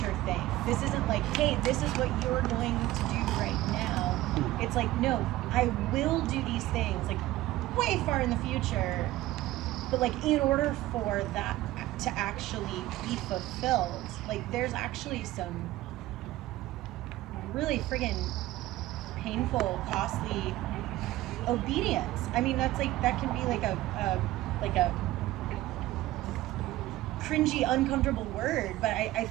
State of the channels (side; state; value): left; quieter; 16.5 dB